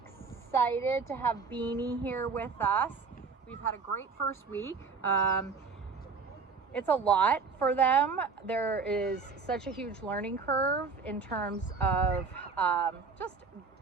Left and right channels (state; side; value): quieter; left; 5.0 dB